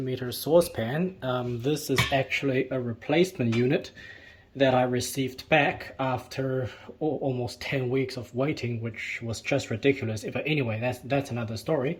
saucepan. This is actually a replacement unit that I received back after almost 10 weeks of waiting, which was just ridiculous. But anyway, that's another story.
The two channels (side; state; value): both; identical; correlation 1.00